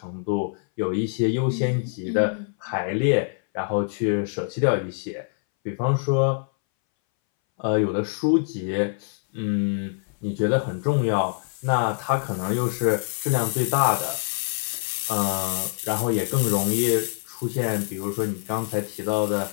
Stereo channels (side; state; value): right; silent; 61 dB below the other